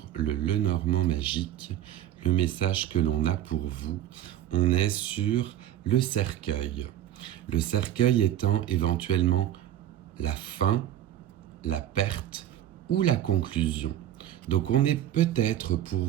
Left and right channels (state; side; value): quieter; left; 11.9 dB